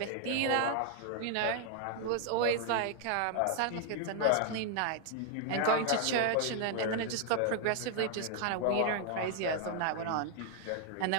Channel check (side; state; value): both; different; correlation 0.00